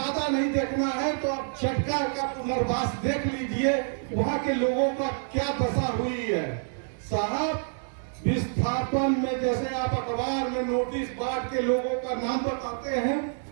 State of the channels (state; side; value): silent; left; digital silence